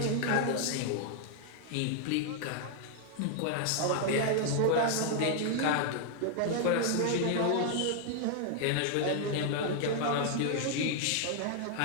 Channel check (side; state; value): both; different; correlation 0.00